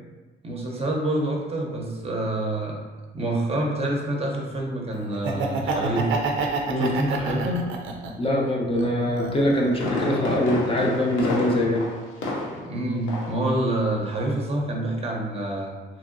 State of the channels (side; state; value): both; normal; correlation 0.54